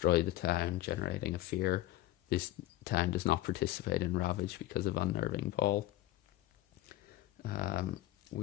the town, generating a fear. This town does not participate in ravage because of unnerving ball.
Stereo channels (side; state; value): right; quieter; 15.6 dB